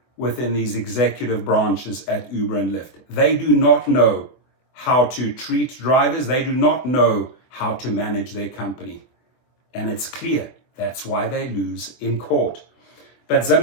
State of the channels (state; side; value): late; right; 24 ms